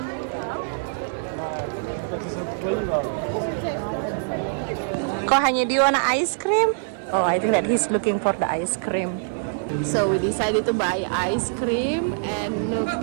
Kok hanya do you want ice cream? Oh, I think that he's looking for the ice cream. So we decided to buy ice cream and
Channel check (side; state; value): left; silent; 62 dB below the other